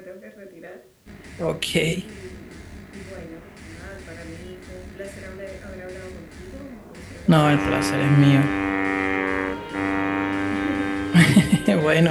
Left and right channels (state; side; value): identical; both; correlation 1.00